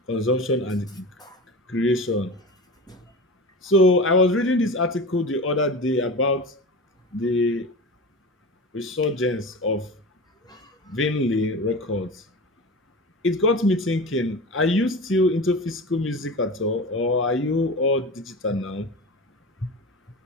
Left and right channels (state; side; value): normal; both; correlation 0.30